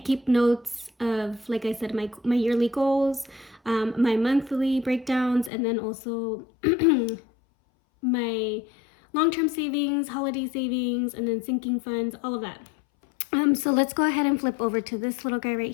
keep notes of, like I said, my yearly goals, my monthly breakdowns, and then also my long-term savings, holiday savings, and then sinking funds, all of that. So let's go ahead and flip over to this little guy right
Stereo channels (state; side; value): drops out; right; at 5.5 s